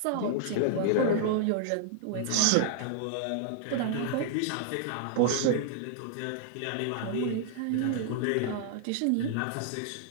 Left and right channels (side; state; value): both; different; correlation -0.01